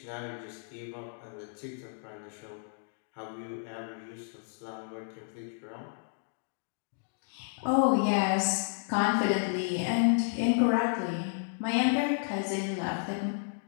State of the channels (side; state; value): right; silent; digital silence